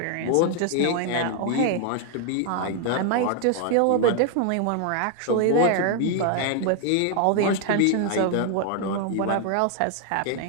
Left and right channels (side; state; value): both; different; correlation 0.00